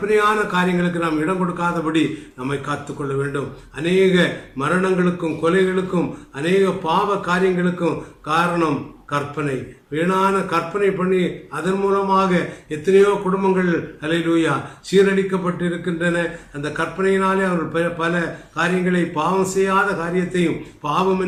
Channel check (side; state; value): both; identical; correlation 1.00